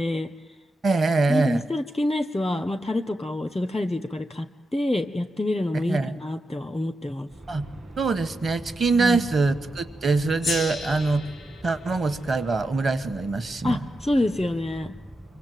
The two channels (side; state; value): both; normal; correlation 0.88